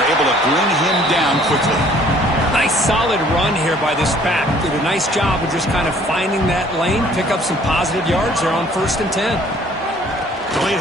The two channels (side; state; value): both; normal; correlation 0.57